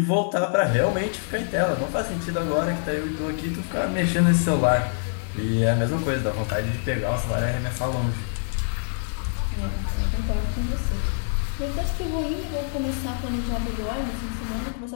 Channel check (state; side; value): silent; right; digital silence